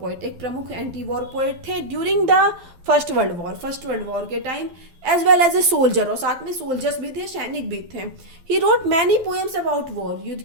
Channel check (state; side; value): late; left; 12 ms